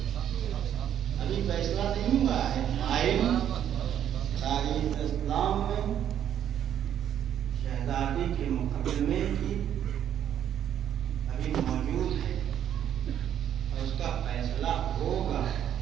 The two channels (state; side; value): quieter; left; 10.1 dB